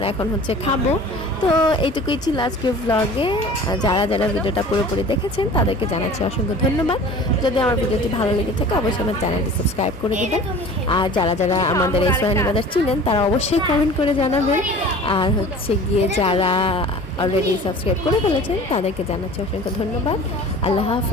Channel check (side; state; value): both; normal; correlation 0.43